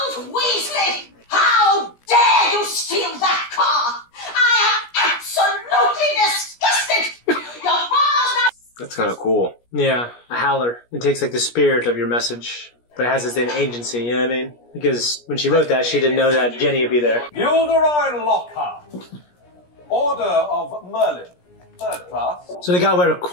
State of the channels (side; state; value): right; late; 17 ms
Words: Weasley! How dare you steal that car! I am absolutely disgusted! Your father's not... That's kind of cool. Yeah, a howler. It takes like the spirit of your message, but it has its own agency, you know what I mean? Because when she wrote that, she didn't know that Jenny would be there. Gilderoy Lockhart. Order of Merlin. Third class. So they got rid of